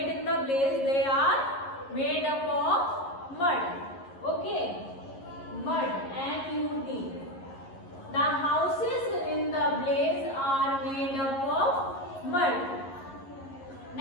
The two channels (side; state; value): right; late; 11 ms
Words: in the place? They are made up of mud. Okay, mud, M-U-D. The houses in the place are made up of mud.